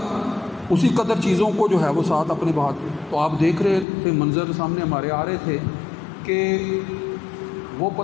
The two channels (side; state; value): right; drops out; at 3.9 s